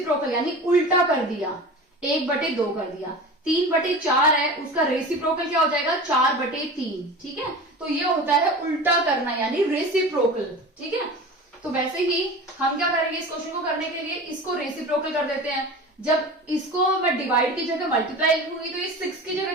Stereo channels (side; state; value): both; normal; correlation 0.34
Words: यानी उल्टा कर दिया, 1/2 कर दिया। 3/4 है, उसका रेसिप्रोकल क्या हो जाएगा 4/3। ठीक है, तो ये होता है उल्टा करना यानी रेसिप्रोकल। ठीक है, तो वैसे ही हम क्या करेंगे, इस क्वेश्चन को करने के लिए इसको रेसिप्रोकल कर देते हैं। जब इसको मैं डिवाइड की जगह मल्टीप्लाई लिखूंगी तो ये 6 की